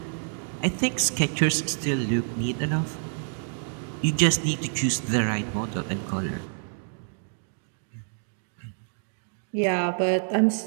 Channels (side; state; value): left; silent; 58 dB below the other